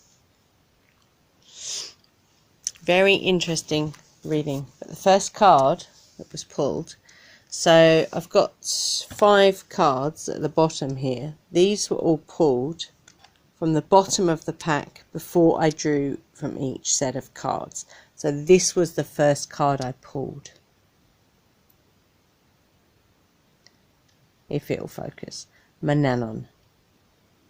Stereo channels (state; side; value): identical; both; correlation 1.00